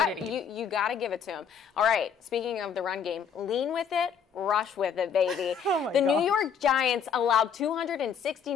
You got to give it to him. All right, speaking of the run game, lean with it, rush with it, baby. The New York Giants allowed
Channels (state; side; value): quieter; right; 6.9 dB